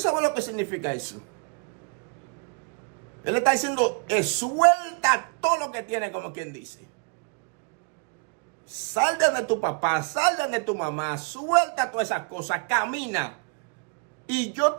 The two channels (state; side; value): quieter; left; 37.9 dB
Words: lo que significa eso? Él está diciendo, suelta todo lo que tiene, como quien dice. Sal de tu papá, sal de tu mamá, suelta todas esas cosas, camina. Y yo